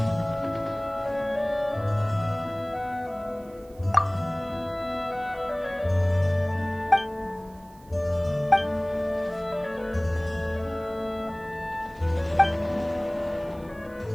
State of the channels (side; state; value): right; noise; hiss, 28 dB below the sound